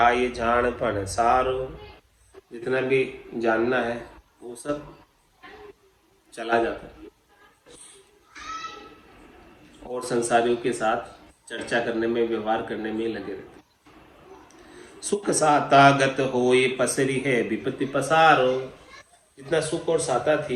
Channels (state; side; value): identical; both; correlation 1.00